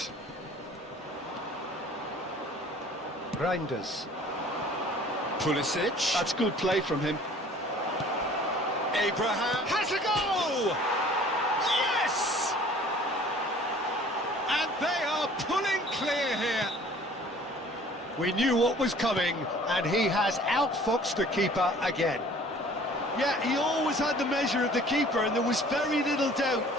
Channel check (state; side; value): normal; both; correlation 0.50